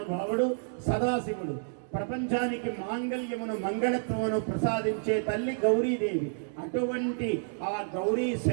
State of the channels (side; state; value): left; silent; digital silence